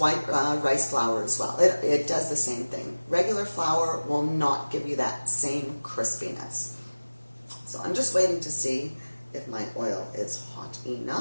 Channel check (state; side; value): inverted; both; correlation -1.00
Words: rice flour as well. It does the same thing. Regular flour will not give you that same crispiness. So I'm just waiting to see if my oil is hot